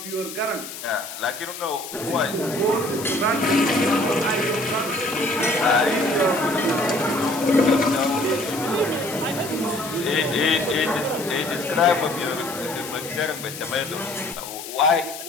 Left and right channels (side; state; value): left; noise; hiss, 11 dB below the sound